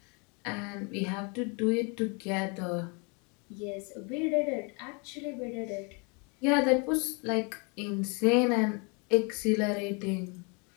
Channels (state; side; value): quieter; right; 33.3 dB